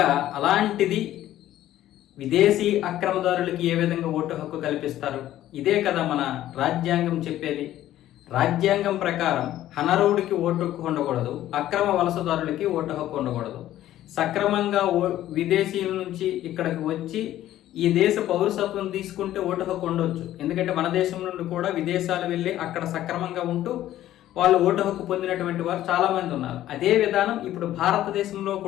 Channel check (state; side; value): quieter; right; 13.3 dB